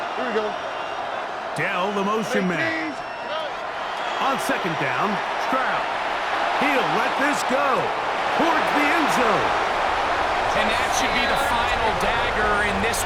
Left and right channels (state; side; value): identical; both; correlation 1.00